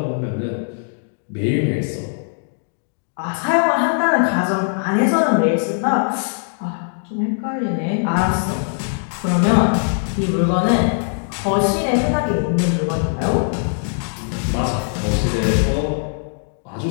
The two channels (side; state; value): right; silent; digital silence